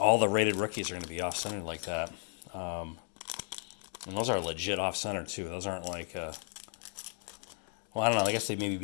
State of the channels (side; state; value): right; silent; 55 dB below the other